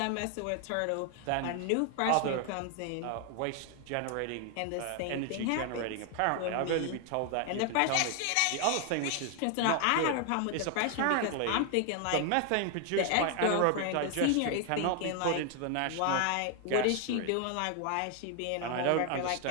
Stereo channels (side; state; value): both; different; correlation 0.00